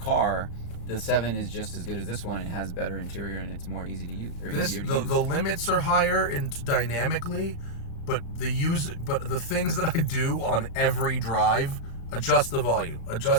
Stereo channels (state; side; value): late; right; 35 ms